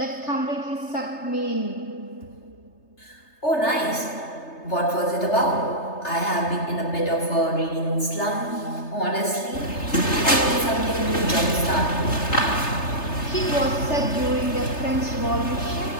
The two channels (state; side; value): late; right; 3.3 ms